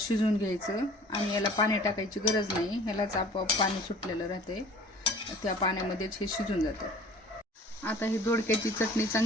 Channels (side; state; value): both; normal; correlation 0.48